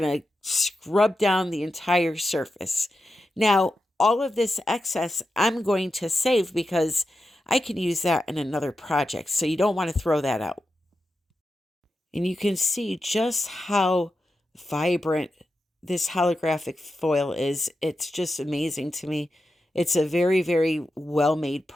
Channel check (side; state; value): both; normal; correlation 0.89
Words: to scrub down the entire surface. Now, all of this excess I'm going to save because I can use that in another project. So you don't want to throw that out. And you can see just how vibrant this holographic foil is. It's just amazing to me. It's a very, very well-made